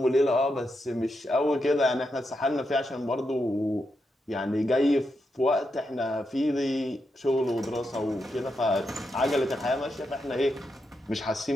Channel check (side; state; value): both; normal; correlation 0.84